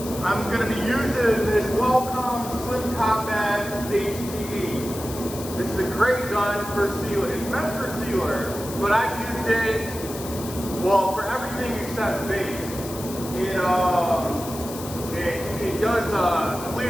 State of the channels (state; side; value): noise; left; hiss, 12 dB below the sound